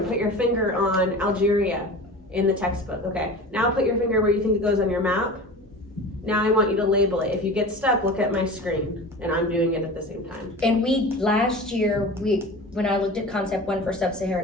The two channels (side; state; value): both; normal; correlation 0.35